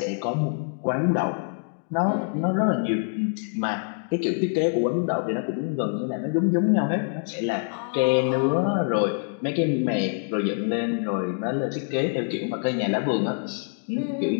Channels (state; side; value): silent; right; digital silence